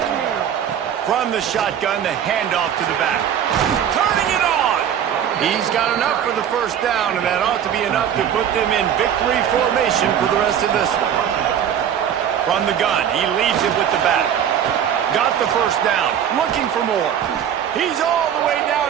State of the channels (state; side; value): quieter; left; 9.2 dB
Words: From the shotgun, the handoff to the back. Turning it on! He's got enough for the first down, and that ought to be enough to put them in victory formation for the rest of this one. From the gun, he leaves it with the back. Got the first down, looking for more. He's all the way